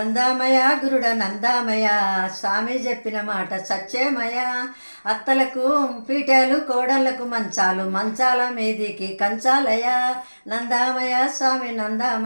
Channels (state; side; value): inverted; both; correlation -1.00